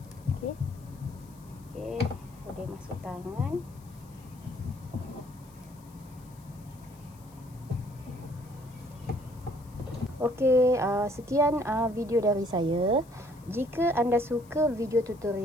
Okey. Okey, boleh masuk tangan. Okey, sekian video dari saya. Jika anda suka video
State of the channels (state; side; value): noise; left; hiss, 26 dB below the sound